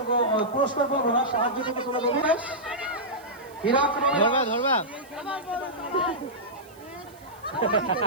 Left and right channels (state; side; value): noise; right; hiss, 26 dB below the sound